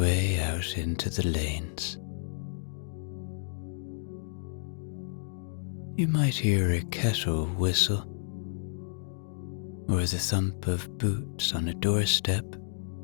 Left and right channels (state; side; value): silent; right; digital silence